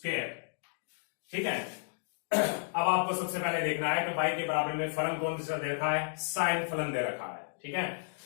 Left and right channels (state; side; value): silent; right; digital silence